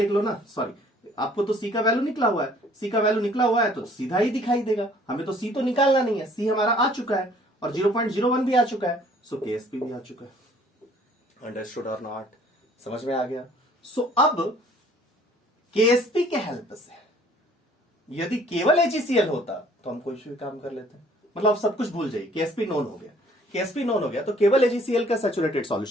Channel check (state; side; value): normal; both; correlation 0.57